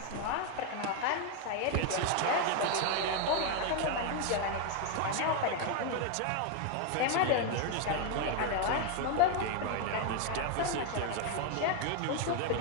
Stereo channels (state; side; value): different; both; correlation 0.01